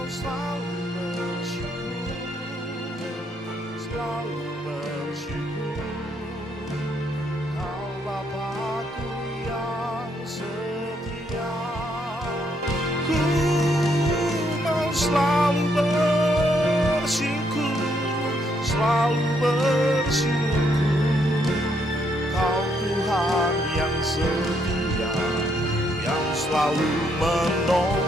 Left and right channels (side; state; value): both; normal; correlation 0.73